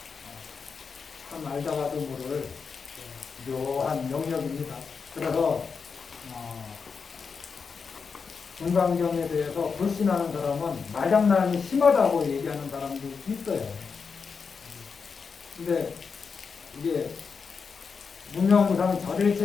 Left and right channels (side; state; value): right; quieter; 5.5 dB